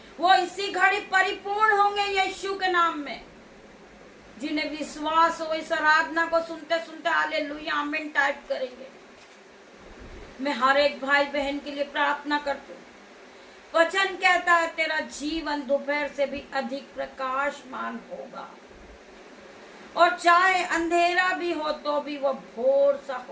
वो इसी घड़ी परिपूर्ण होंगे यीशु के नाम में। जिन्हें विश्वास हो इस आराधना को सुनते सुनते हालेलुया आमीन टाइप करेंगे। मैं हर एक भाई बहन के लिए प्रार्थना करती हूँ। वचन कहता है तेरा जीवन दोपहर से भी अधिक प्रकाशमान होगा, और चाहे अंधेरा भी हो तो भी वह भोर सा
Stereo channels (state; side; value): identical; both; correlation 1.00